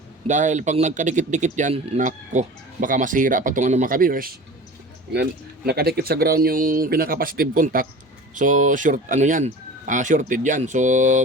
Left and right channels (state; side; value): normal; both; correlation 0.37